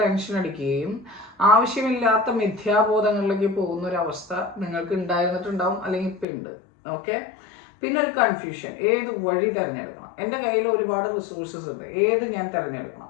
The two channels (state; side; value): drops out; right; at 6.2 s